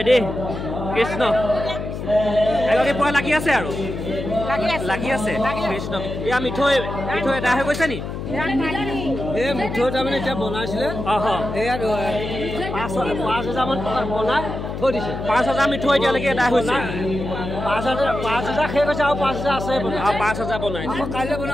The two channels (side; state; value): left; noise; hum, 6 dB below the sound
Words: দেই কৃষ্ণ এগৰাকী পুৰা লাগি আছে আৰু লাগি আছে কৃষ্ণ এয়া মিঠৈ এটা হৈ গৈছে নি এই মিঠৈ তাৰমানে এতিয়া বনাইছিলে এয়া 5,000 মান টকা বনাই থৈ দিছে 5,000 মিঠৈ এতিয়ালৈকে এটা হৈছে 5,000 শেষ হৈছে আৰু 5,000 আছে আৰু 5,000 বনাইছে কাইলৈ